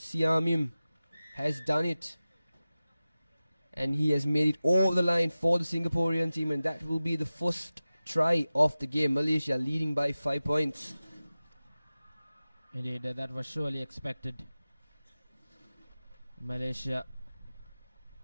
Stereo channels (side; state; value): both; inverted; correlation -0.96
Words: has done it. And he has made it over the line for the Singaporean team, and that will be the first try of the game. Malaysia leading by 5 points. Indeed, that was surely expected. Malaysia,